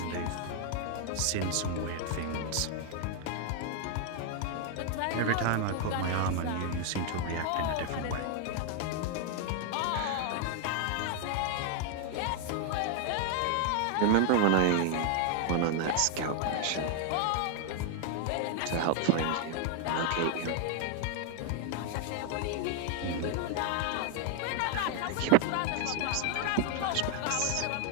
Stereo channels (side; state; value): both; different; correlation 0.00